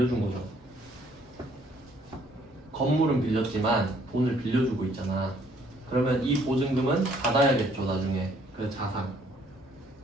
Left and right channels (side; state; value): both; normal; correlation 0.64